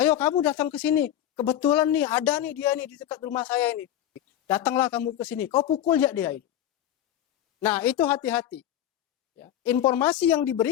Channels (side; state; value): right; quieter; 11.6 dB